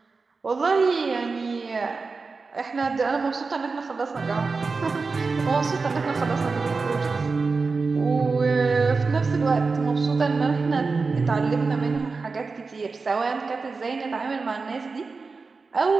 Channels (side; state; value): left; quieter; 4.3 dB